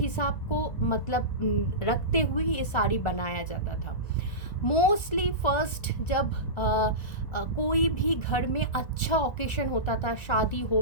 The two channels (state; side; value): late; right; 1.4 ms